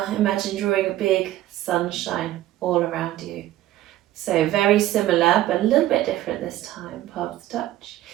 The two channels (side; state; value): left; quieter; 14.4 dB